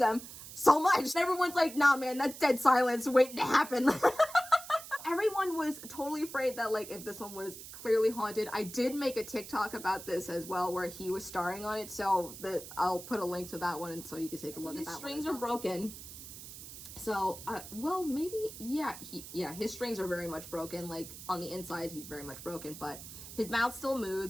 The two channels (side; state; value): right; noise; hiss, 13 dB below the sound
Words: so much. And everyone's like, nah man, that's dead silence waiting to happen. Everyone was totally afraid that like if this one was clearly haunted. I did make a TikTok about this as well where he was starring on it, so I'll put a link to that one and so you can take a look at that. His strings are broken. So, well, maybe, yeah, his strings are very much broken. Like, on the inside, he's very much broken, but his mouth still